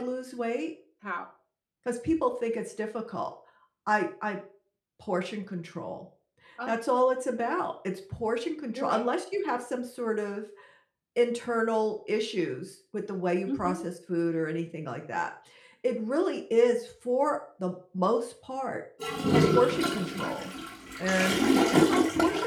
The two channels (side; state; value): both; identical; correlation 1.00